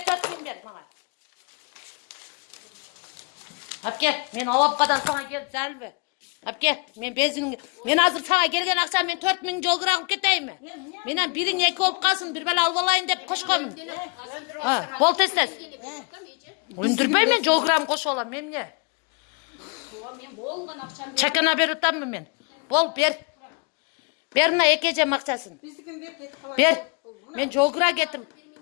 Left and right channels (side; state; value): right; quieter; 33.3 dB